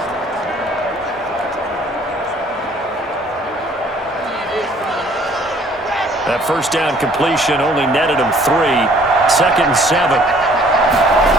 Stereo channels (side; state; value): both; normal; correlation 0.58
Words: That first down completion only netted him 3. Second and 7.